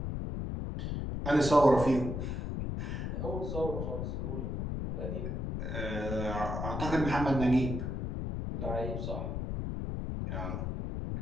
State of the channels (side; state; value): left; noise; rumble, 3 dB below the sound